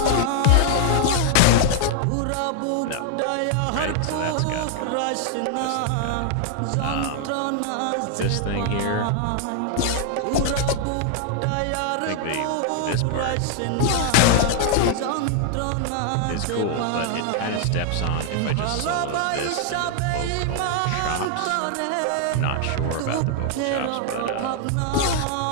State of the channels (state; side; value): different; both; correlation 0.00